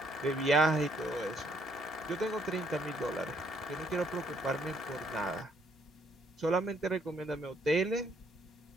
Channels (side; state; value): both; normal; correlation 0.68